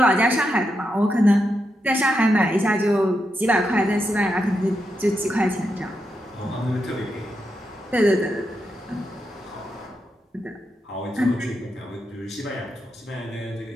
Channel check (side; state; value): both; normal; correlation 0.85